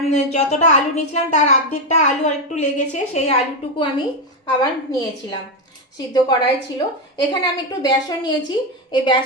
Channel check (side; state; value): both; normal; correlation 0.07